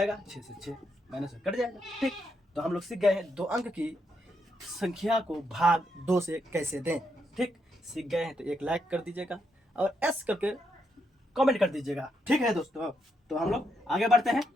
6 से 6 माइनस कट जाएगा। ठीक, तो हम लोग सीख गए हैं 2 अंक की संख्या को भाग 2 से कैसे दें। ठीक, सीख गए हैं तो एक लाइक कर दीजिएगा और एस करके कमेंट कर दीजिएगा। ठीक है दोस्तों, तो हम लोग आगे बढ़ते हैं।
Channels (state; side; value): normal; both; correlation 0.79